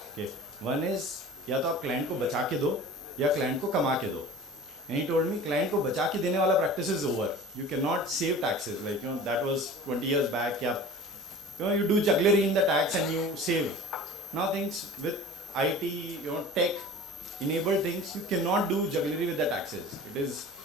Okay, one is या तो आप क्लाइंट को बचा के दो या क्लाइंट को कमा के दो. And he told me client को बचा के देने वाला practice is over. You cannot save taxes, like that was 20 years back. You do jugglery in the tax and you save. Now things with IT, tech enabled things, you cannot do jugglery with the taxes. It is,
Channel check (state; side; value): normal; both; correlation 0.39